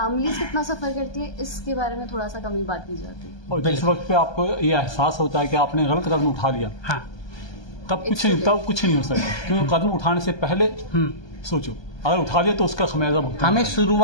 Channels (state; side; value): late; right; 1.2 ms